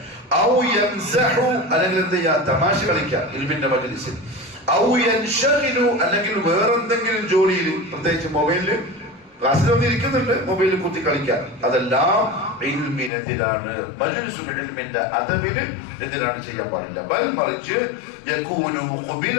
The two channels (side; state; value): right; drops out; at 13.1 s